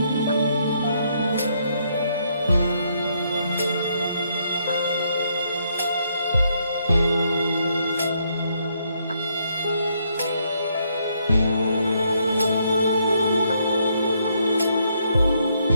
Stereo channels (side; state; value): both; inverted; correlation -0.74